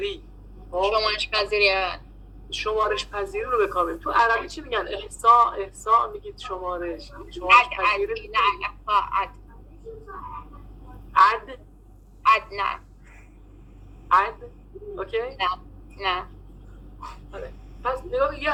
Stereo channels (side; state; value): both; identical; correlation 1.00